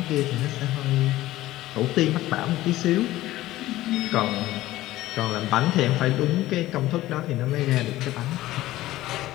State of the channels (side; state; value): right; quieter; 16.1 dB